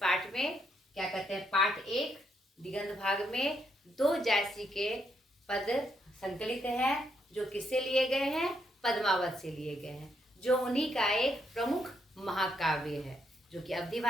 में क्या कहते हैं, पाठ 1 दिगंत भाग में 2 जायसी के पद संकलित हैं, जो किससे लिए गए हैं, पद्मावत से लिए गए हैं, जो उन्हीं का एक प्रमुख महाकाव्य है जो कि अवधी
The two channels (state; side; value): normal; both; correlation 0.76